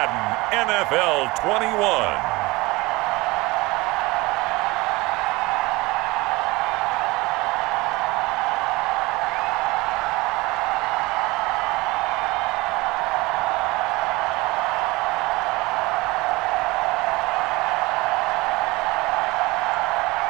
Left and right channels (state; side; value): quieter; left; 22.2 dB